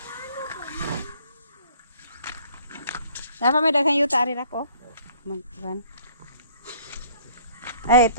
Dapat may daghang yuta ari ko. Magban. Ay,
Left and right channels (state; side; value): inverted; both; correlation -0.57